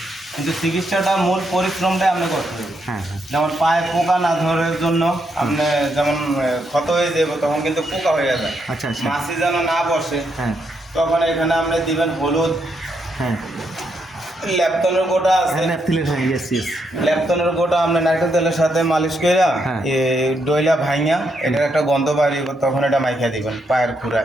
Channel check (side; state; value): both; normal; correlation 0.79